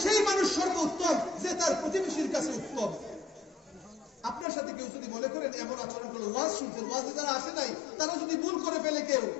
সেই মানুষ সর্বোত্তম যে তার প্রতিবেশীর কাছে উত্তম। আপনার সাথে কেউ যদি মনে করেন এমন আচরণ করলো, ওয়াজ শুনছেন, ওয়াজে যারা আসে নাই তারা যদি ভুল করে ফেলে কেউ,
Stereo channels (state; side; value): drops out; right; at 4.5 s